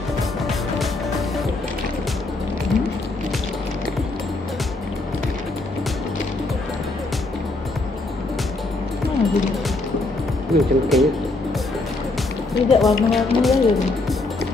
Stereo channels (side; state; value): right; quieter; 3.1 dB